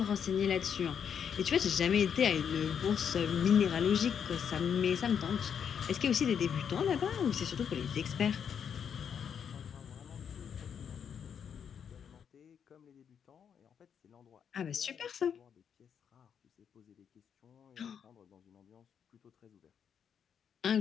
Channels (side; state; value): right; quieter; 7.7 dB